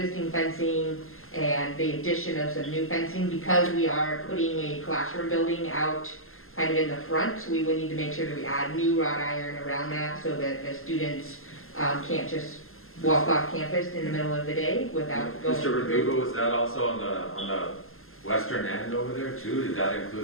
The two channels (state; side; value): late; right; 0.61 ms